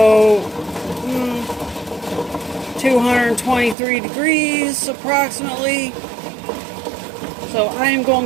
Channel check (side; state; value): left; drops out; at 3.8 s